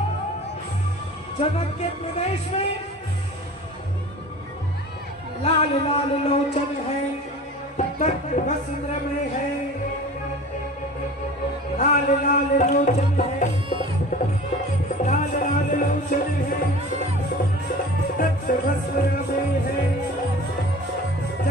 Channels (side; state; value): both; normal; correlation 0.40